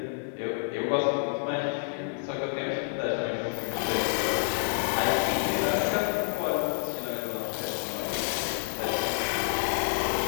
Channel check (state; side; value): silent; right; digital silence